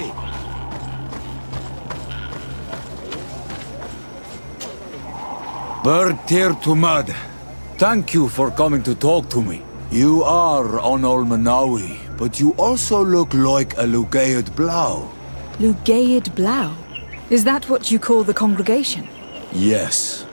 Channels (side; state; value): both; inverted; correlation -1.00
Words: Bird tear to mud. Thank you for coming to talk to me. You are on Olmanawi, but you also look like a Lugaid Blau. Lugaid Blau? Is that what you call the congregation? Yes.